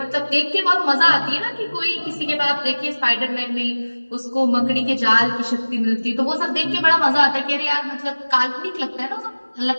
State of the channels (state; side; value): inverted; both; correlation -1.00